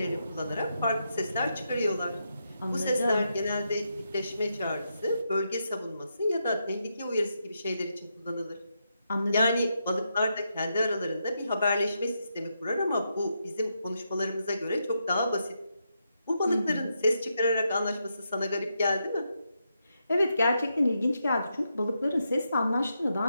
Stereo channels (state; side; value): inverted; both; correlation -0.83